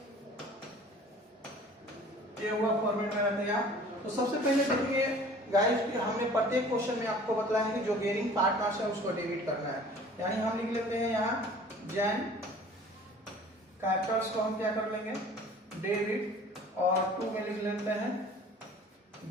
ये हुआ फॉर्मेट मेरा तैयार। तो सबसे पहले देखिए गाइस कि हमने प्रत्येक क्वेश्चन में आपको बताया है कि जो गेनिंग पार्टनर्स है उसको डेबिट करना है, यानी हम लिख लेते हैं यहाँ जैन कैपिटल्स को हम क्या कर लेंगे, डेबिट, और 2 में लिख लेते हैं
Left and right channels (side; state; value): both; normal; correlation 0.48